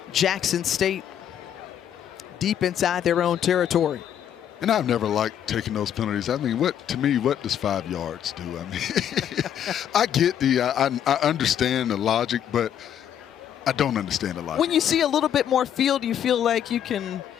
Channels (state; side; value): quieter; right; 9.7 dB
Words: Jackson State deep inside their own territory. And I've never liked taking those penalties. I mean, what does 5 yards do? I mean, I get I understand the logic, but I don't understand the logic. When you see a little bit more field, you feel like you can